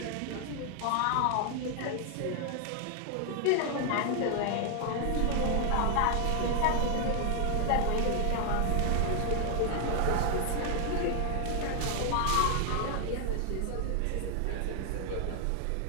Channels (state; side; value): different; both; correlation 0.00